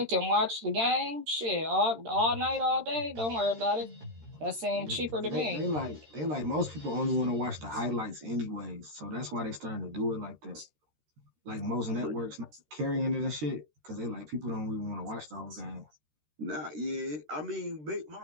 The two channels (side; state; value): left; late; 13 ms